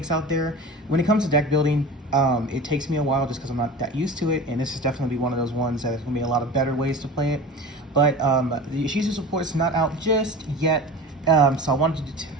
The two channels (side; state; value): both; normal; correlation 0.34